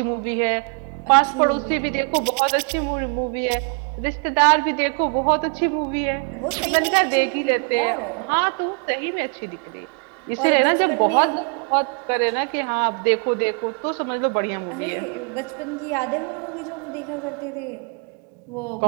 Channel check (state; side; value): quieter; left; 38.6 dB